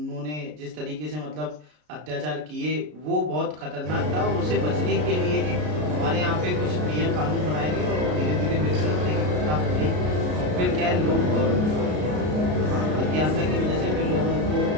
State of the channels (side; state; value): left; late; 33 ms